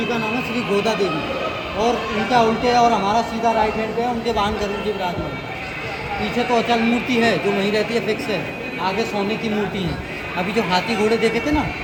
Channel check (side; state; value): both; identical; correlation 1.00